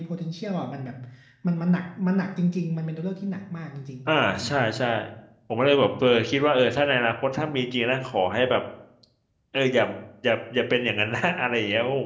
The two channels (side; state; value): both; identical; correlation 1.00